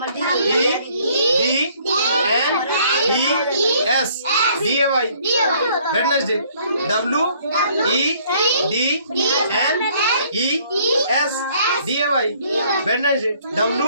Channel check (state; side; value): inverted; both; correlation -0.61